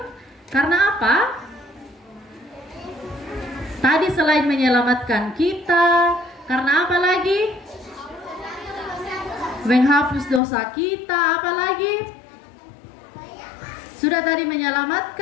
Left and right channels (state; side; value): drops out; right; at 10.4 s